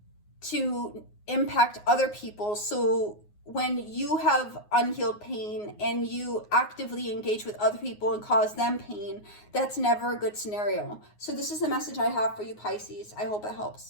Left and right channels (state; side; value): late; right; 9.5 ms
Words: to impact other people. So when you have unhealed pain and you actively engage with other people and cause them pain, that's never a good scenario. So this is the message I have for you, Pisces. I hope it